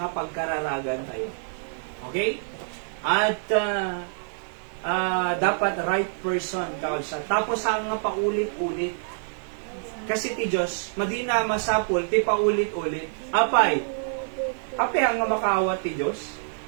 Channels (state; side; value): silent; left; 56 dB below the other